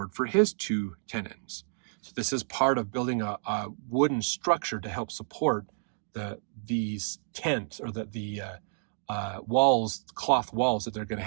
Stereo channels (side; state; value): left; silent; digital silence